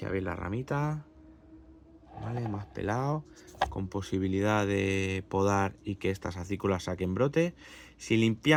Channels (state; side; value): identical; both; correlation 1.00